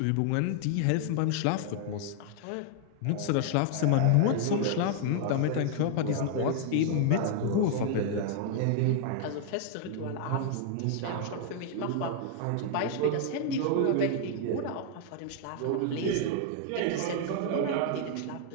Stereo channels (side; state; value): both; different; correlation -0.01